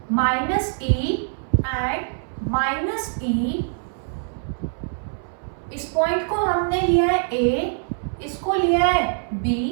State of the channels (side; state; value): left; silent; 62 dB below the other